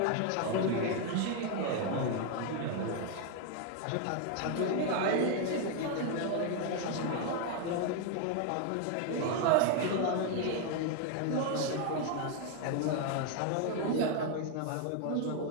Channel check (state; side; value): different; both; correlation 0.00